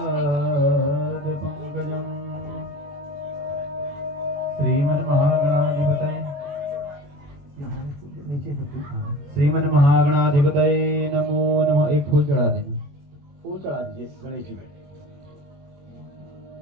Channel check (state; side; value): late; left; 21 ms